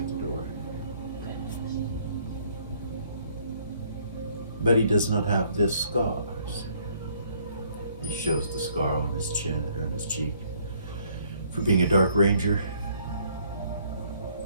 the door. But he does not have this scars. He shows the scar on his chin or on his cheek for being a Dark Ranger.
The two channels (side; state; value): both; inverted; correlation -0.63